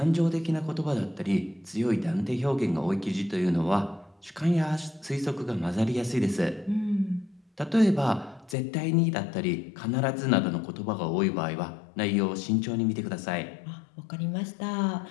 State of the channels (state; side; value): drops out; right; at 8.6 s